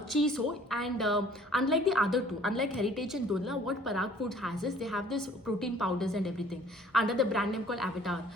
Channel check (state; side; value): normal; both; correlation 0.54